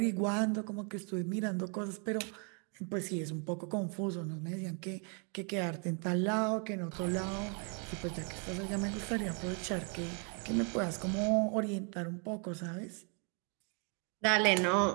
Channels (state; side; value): quieter; left; 37.8 dB